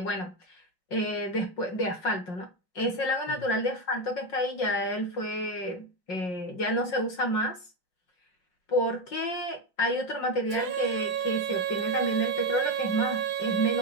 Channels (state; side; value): late; right; 5.5 ms